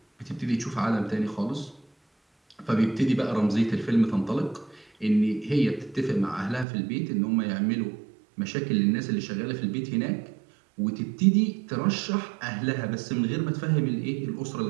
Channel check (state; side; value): drops out; left; at 6.7 s